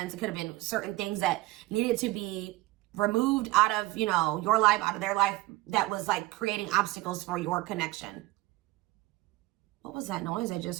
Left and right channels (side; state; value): left; quieter; 19.6 dB